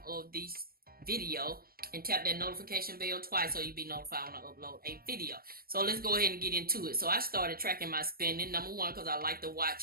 of this video and tap that notification bell twice so you'll be notified when I upload a video. So let's go ahead and get into it. So I started tracking my spending. Number one, because I like to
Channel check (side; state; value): left; late; 0.43 ms